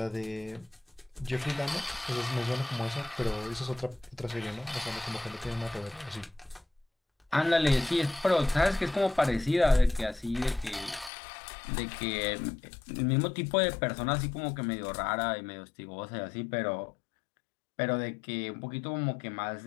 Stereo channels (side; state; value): right; drops out; at 11.1 s